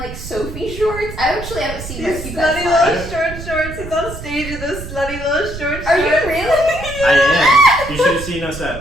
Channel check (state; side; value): noise; right; rumble, 10 dB below the sound